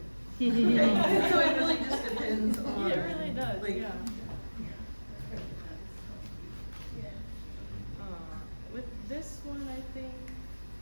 So it really just depends on. Yeah, it really does. Like, yeah. With this one, I think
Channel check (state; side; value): inverted; both; correlation -1.00